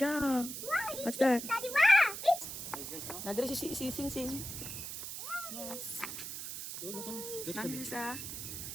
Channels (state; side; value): noise; right; hiss, 7 dB below the sound